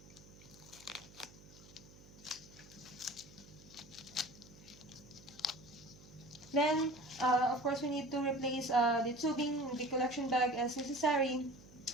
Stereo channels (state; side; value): noise; right; hum, 21 dB below the sound